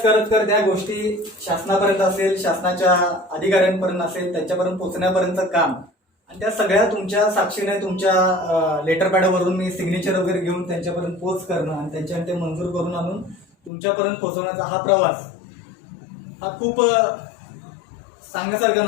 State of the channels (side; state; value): right; drops out; at 13.7 s